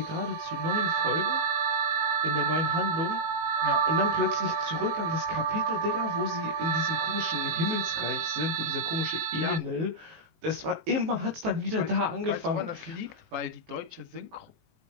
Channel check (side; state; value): left; late; 19 ms